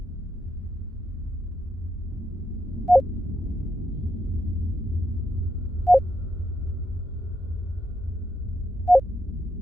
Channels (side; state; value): both; normal; correlation 0.82